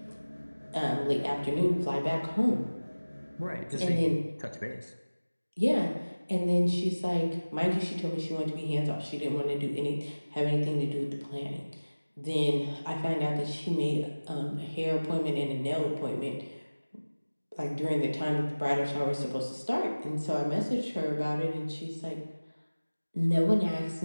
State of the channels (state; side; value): inverted; both; correlation -1.00